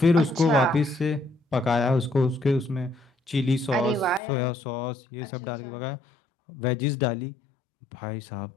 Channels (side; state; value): right; drops out; at 4.2 s